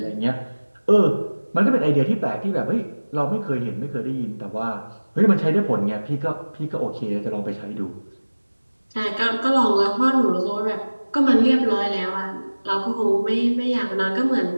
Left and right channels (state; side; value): inverted; both; correlation -1.00